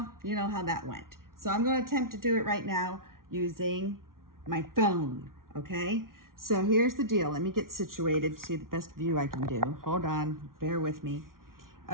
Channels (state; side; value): late; left; 0.92 ms